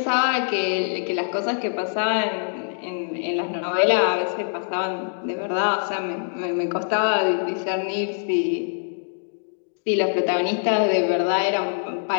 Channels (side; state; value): right; silent; digital silence